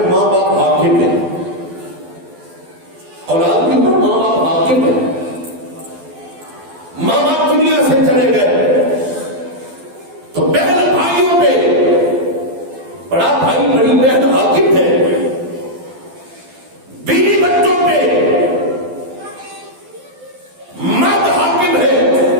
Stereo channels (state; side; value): late; left; 12 ms